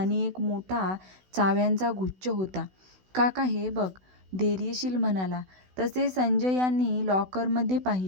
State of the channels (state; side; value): late; left; 16 ms